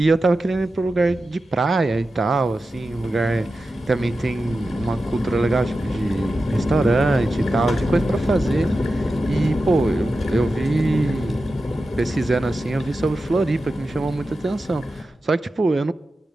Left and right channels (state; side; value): normal; both; correlation 0.92